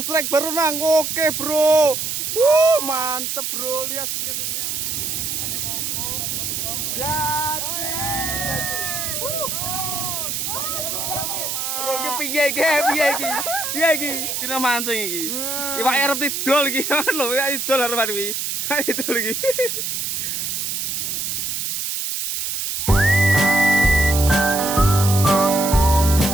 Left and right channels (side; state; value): right; noise; hiss, 2 dB below the sound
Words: strike baru nang. Oke, bro. Mantep, bro. Lihat lihatnya. Bro, iki piye iki? Piye iki? Kira mancing iki. Iwak arep tidol iki. Lho, iwak tidol arep iki. Tidol iki.